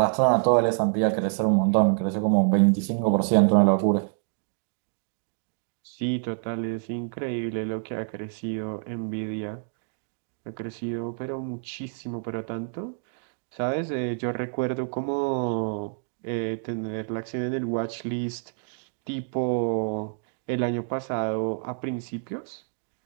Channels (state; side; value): silent; left; digital silence